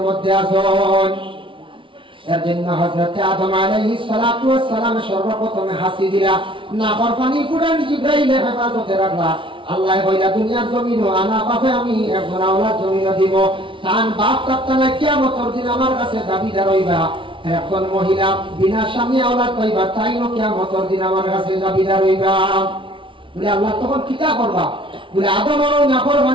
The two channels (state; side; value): late; left; 0.25 ms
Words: মধ্যে আছেন। এর জন্য হযরত আদম আলাইহিস সালাতু ওয়াস সালাম সর্বপ্রথমে হাসি দিলা, না পানি কোরআন জিবরাইল হেফাজতে রাখলা। আল্লাহ কইলা দুনিয়ার জমিন আনা পাবে, আমি একজন আওলাদ জমিন দিব, তান বাপ কাপ্তানা কিয়ামতের দিন আমার কাছে দাবিদার হইবা। একজন মহিলা বিনা স্বামী আওলাদ পাইবা, তাই না কিয়ামতের দিন আমার কাছে দাবিদার হইবা। বলে আল্লাহ তখন কিতা করবা? বলে আদম আর